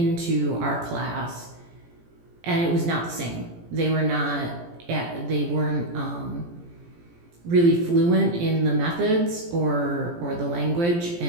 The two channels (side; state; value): left; late; 17 ms